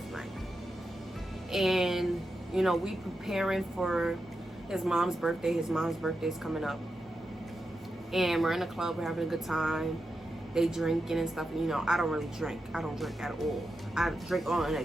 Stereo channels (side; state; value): both; normal; correlation 0.88